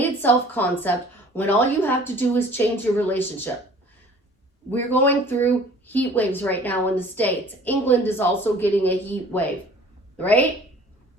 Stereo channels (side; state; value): both; normal; correlation 0.49